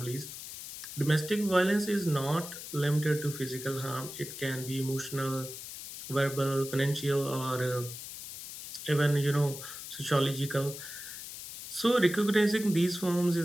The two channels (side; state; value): left; noise; hiss, 10 dB below the sound